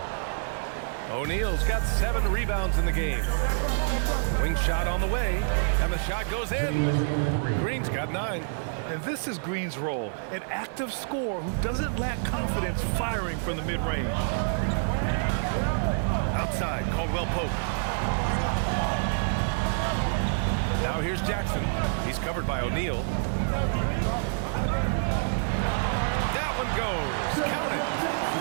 O'Neal's got 7 rebounds in the game. Wing shot on the way, and the shot goes in. Green's got 9. And this is Green's role, an active scorer who doesn't lack confidence firing from the mid-range. Outside, Caldwell Pope. Now here's Jackson. He's covered by O'Neal. That one goes. Count it.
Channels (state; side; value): silent; left; digital silence